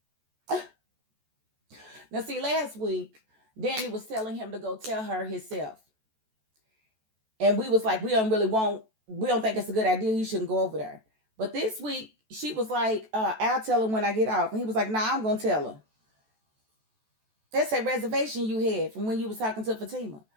Now, see, last week, Dani was telling him to go tell her himself. And we was like, we don't think it's a good idea. He shouldn't go over there. But this week, she was like, I'll tell him when I get off. And he was like, nah, I'm going to tell her. That's a reservation you had from when you was talking to Fatima.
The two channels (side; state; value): left; late; 14 ms